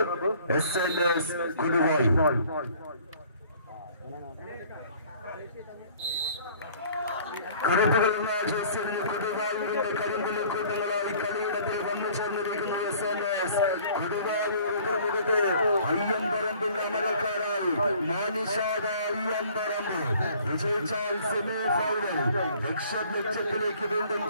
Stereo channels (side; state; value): both; inverted; correlation -0.54